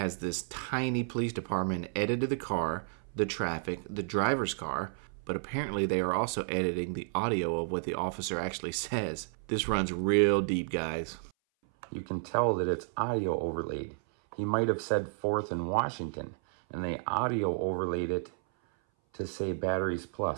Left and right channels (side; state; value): left; silent; 57 dB below the other